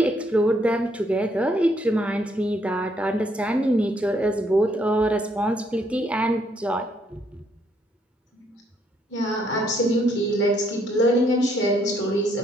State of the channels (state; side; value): normal; both; correlation 0.70